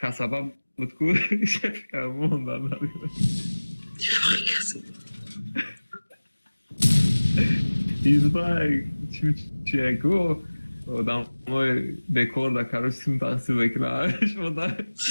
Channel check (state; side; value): inverted; both; correlation -1.00